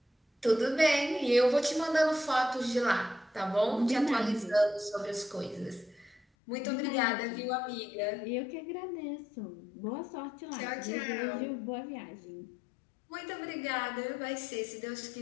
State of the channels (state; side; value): drops out; right; at 6.2 s